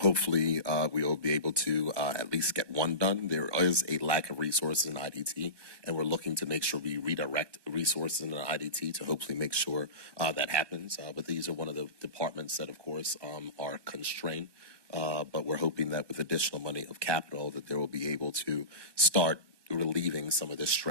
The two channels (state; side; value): late; left; 1.1 ms